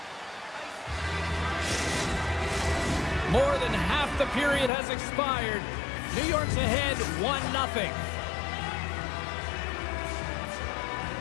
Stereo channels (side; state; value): right; drops out; at 4.7 s